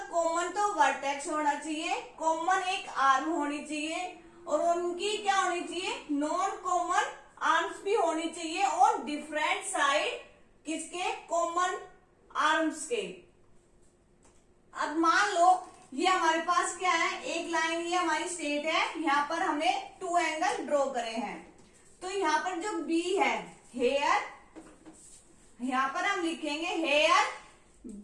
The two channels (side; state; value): both; identical; correlation 1.00